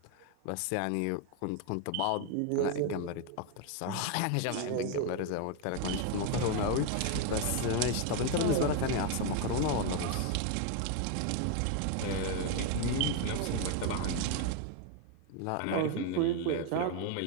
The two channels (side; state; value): both; different; correlation 0.01